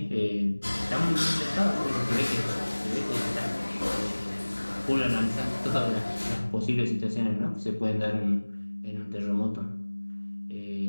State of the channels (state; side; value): inverted; both; correlation -1.00